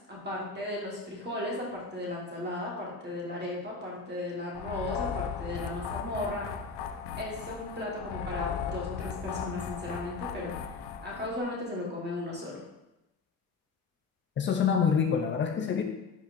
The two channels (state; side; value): quieter; right; 4.5 dB